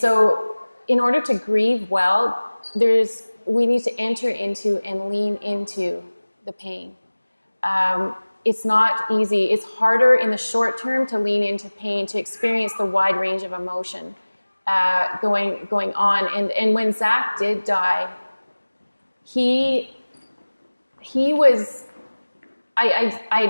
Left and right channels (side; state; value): both; inverted; correlation -1.00